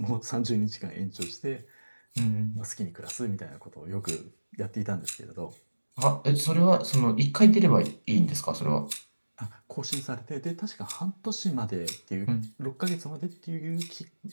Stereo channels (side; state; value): both; inverted; correlation -1.00